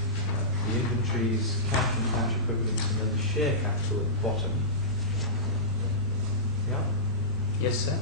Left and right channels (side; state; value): both; normal; correlation -0.18